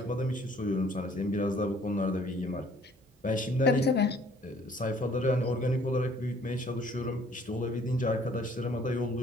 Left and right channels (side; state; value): both; normal; correlation 0.58